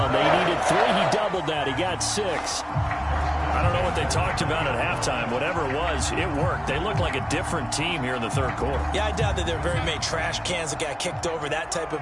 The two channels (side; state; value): both; identical; correlation 1.00